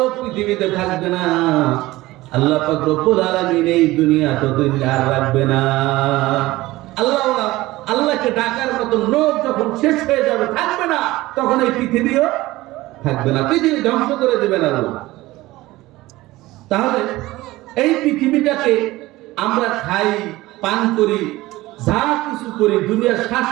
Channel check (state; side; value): quieter; left; 18.4 dB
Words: পৃথিবীতে থাকবে না, আল্লাহ পাক রব্বুল আলামিন এই দুনিয়া ততদিন আর রাখবে না। আল্লাহওয়ালা, আল্লাহকে ডাকার মতো লোক যখন শেষ হয়ে যাবে, থাকবে না, তখন এই পৃথিবীও থাকবে না, পৃথিবী ধ্বংস করে দেবেন আল্লাহ। তাহলে এই পৃথিবীটাকে আমরা খাই, পান করি, যা কিছু করি, দুনিয়ার